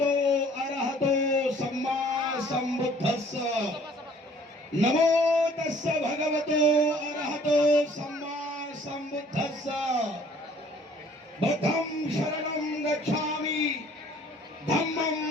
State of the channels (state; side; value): normal; both; correlation 0.56